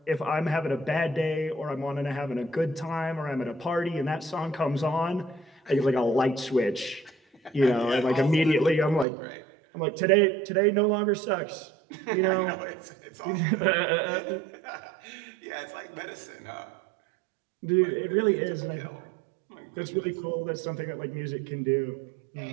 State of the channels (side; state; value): left; drops out; at 9.1 s